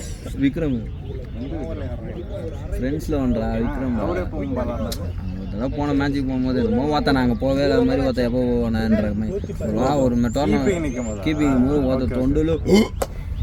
விக்ரம் ஃப்ரெண்ட்ஸில் வந்தா விக்ரம் அவரே போகும் பாலாண்டாரு. அதெல்லாம் போன மேட்ச்சுக்கு போகும்போது என்னமோ பார்த்தா நாங்கள் போகவே இல்லாத மாதிரி பார்த்தா எப்போ போவேன்ற மாதிரி ஒரு டோர்னமெண்ட் நிற்கும் போது கீப்பிங் போது பார்த்த தொண்டில்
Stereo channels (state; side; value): identical; both; correlation 1.00